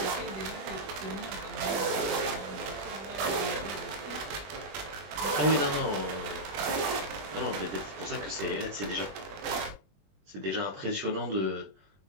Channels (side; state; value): left; late; 21 ms